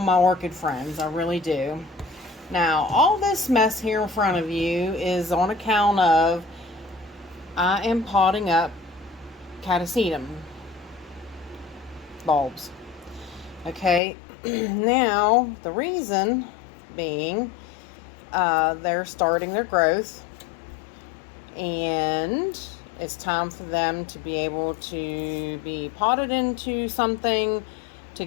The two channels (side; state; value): right; drops out; at 14.0 s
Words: my orchid friends. I really do. Now, all this mess here in front of you is on account of I am potting up catasetum bulbs. Okay, now the reason being they're starting their growth and it's time for them to be able to be potted into something to